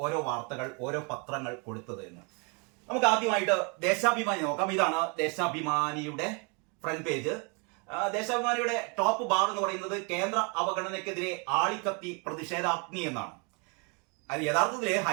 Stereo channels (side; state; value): left; quieter; 33.7 dB